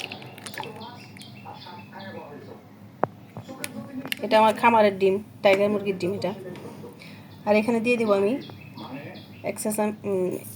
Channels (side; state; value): both; identical; correlation 1.00